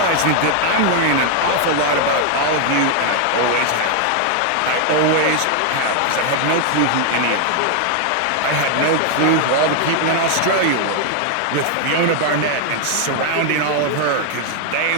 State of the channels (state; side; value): different; both; correlation 0.00